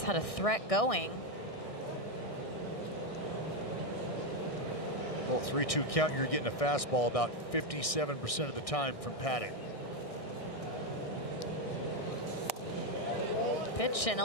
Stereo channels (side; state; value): right; late; 1.6 ms